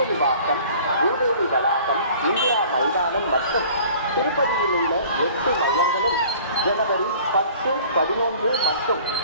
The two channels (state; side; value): inverted; both; correlation -0.49